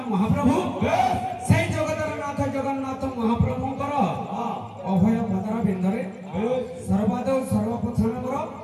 ମହାପ୍ରଭୁ ସେଇ ଜଗତର ନାଥ ଜଗନ୍ନାଥ ମହାପ୍ରଭୁଙ୍କର ଅଭୟ ପଦର ବିନ୍ଦରେ ସର୍ବାଦୌ ସର୍ବପ୍ରଥମର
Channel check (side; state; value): both; identical; correlation 1.00